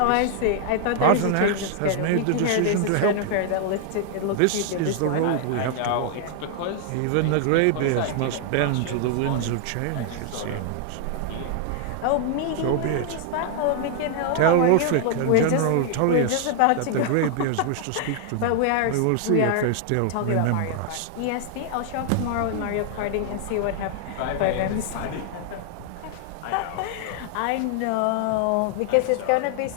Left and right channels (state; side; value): different; both; correlation 0.00